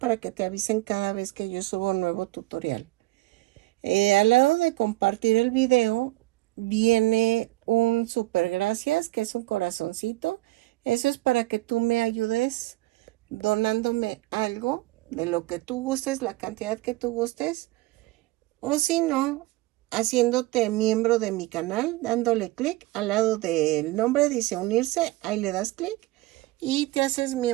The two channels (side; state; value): left; quieter; 19.7 dB